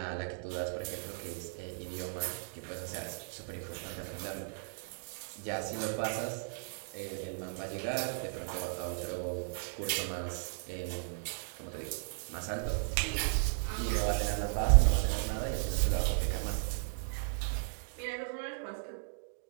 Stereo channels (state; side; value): silent; left; digital silence